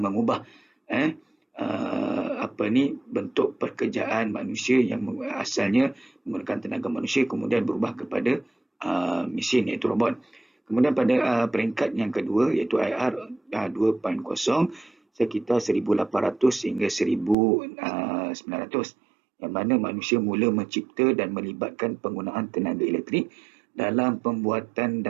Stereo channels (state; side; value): drops out; left; at 17.4 s